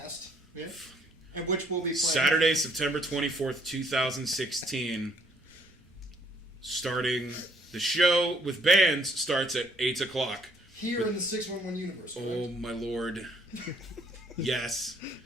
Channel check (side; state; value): both; normal; correlation 0.65